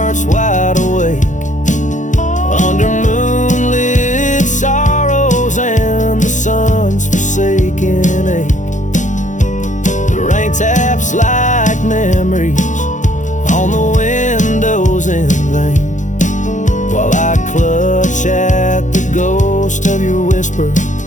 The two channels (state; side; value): late; right; 0.36 ms